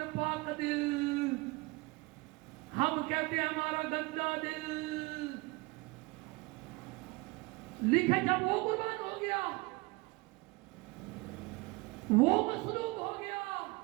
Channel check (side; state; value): left; quieter; 24.2 dB